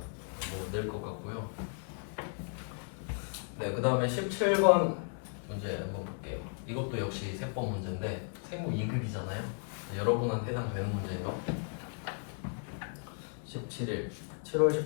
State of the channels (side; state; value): right; silent; 55 dB below the other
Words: 뭐 낼 것 같고요. 네, 그 다음에 17번 문제 한번 볼게요. 이것도 역시 세법 문제인데 생고 2급이잖아요. 여러분한테 해당되는 문제예요. 17일